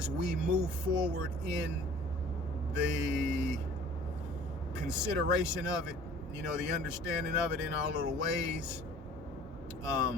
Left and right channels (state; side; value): normal; both; correlation 0.49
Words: we move forward in the consideration of it, the understanding of it in our little ways,